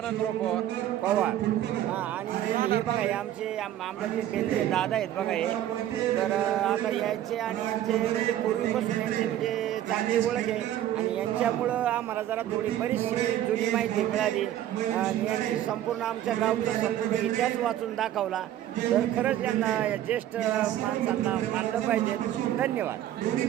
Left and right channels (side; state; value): left; quieter; 12.2 dB